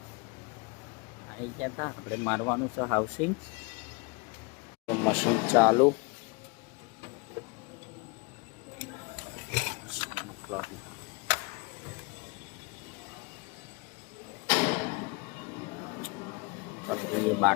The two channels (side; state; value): right; quieter; 28.4 dB